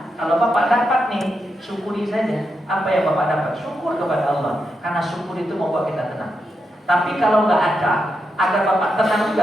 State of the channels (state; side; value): normal; both; correlation 0.85